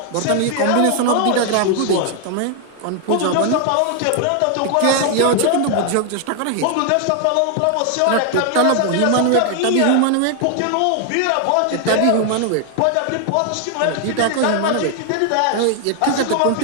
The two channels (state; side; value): different; both; correlation 0.00